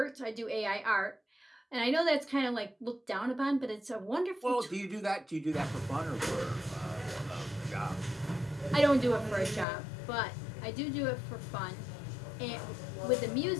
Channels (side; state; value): right; drops out; at 9.7 s